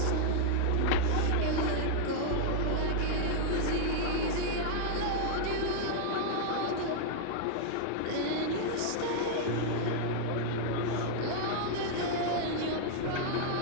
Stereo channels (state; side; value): different; both; correlation -0.01